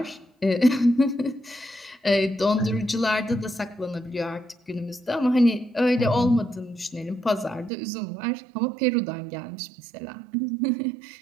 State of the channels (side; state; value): left; drops out; at 7.7 s